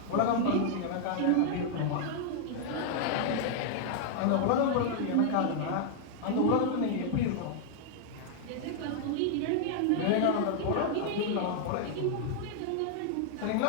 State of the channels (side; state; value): both; different; correlation -0.01